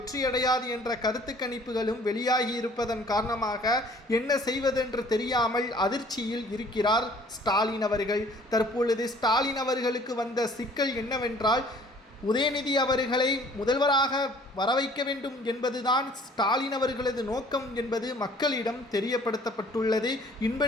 என்ற கருத்து கணிப்புகளும் வெளியாகி இருப்பதன் காரணமாக என்ன செய்வதென்று தெரியாமல் அதிர்ச்சியில் இருக்கிறார் ஸ்டாலின் அவர்கள். தற்பொழுது ஸ்டாலின் அவர்களுக்கு வந்த சிக்கல் என்னவென்றால், உதயநிதி அவர்களை முதல்வராக வரவைக்க வேண்டும் என்பதுதான் ஸ்டாலின் அவர்களது நோக்கம் என்பது மக்களிடம் தெரியப்படுத்தப்பட்டுள்ளது.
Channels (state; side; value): normal; both; correlation 0.55